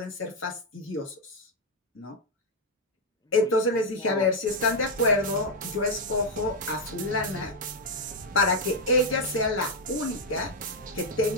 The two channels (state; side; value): normal; both; correlation 0.01